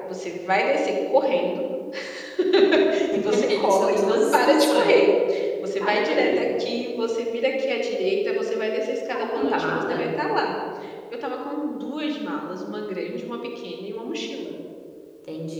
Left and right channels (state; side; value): identical; both; correlation 1.00